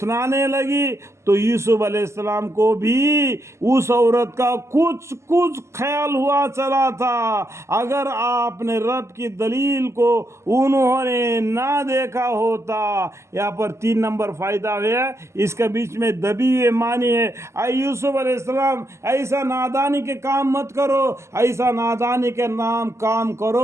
لگی، تو یوسف علیہ السلام کو بھی اس عورت کا کچھ خیال ہوا چلا تھا۔ اگر آپ نے رب کی دلیل کو انہوں نے نہ دیکھا ہوتا، یہاں پر 3 نمبر فائدہ ہے، اس کے بیچ میں دبی ہوئے معنی ہے، اے یوسف علیہ السلام، ایسا نادانی کے کام مت کرو، ایسا نادانی کے کام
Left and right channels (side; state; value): left; late; 0.13 ms